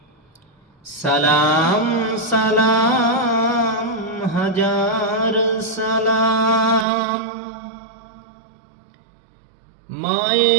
সালাম সালাম হাজার সালাম,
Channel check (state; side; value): drops out; left; at 6.9 s